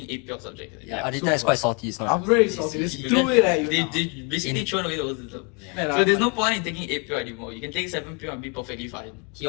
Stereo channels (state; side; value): quieter; right; 33.5 dB